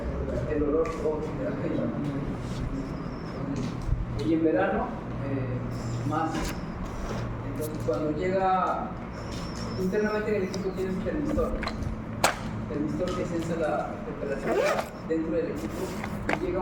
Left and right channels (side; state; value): both; identical; correlation 1.00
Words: el olor todo era aquello. Y en verano, más. Entonces, cuando llega, internamente en el equipo tienes un termistor. El termistor que sensa la temperatura dentro del equipo y llega